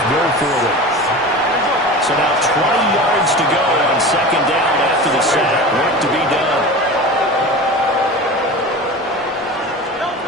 go for them. So now 20 yards to go on second down after the sack. Work to be done.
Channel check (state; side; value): normal; both; correlation 0.32